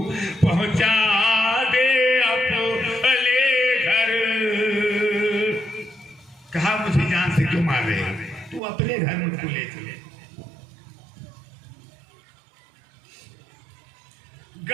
पहुंचा दे अपने घर। कहा मुझे जान से क्यों मार रहे हो, तू अपने घर मुझको ले चले।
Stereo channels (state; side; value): drops out; left; at 8.6 s